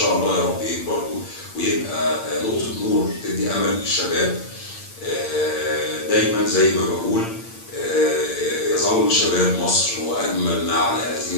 الله يا رب يكبر ويبقى نقطه نور تدي امل للشباب. دايما زي ما بقول يظل شباب مصر هو اجمل ما على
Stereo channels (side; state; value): right; late; 8.7 ms